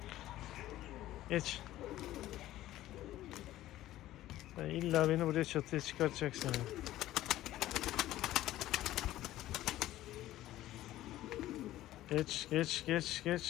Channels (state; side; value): quieter; right; 14.7 dB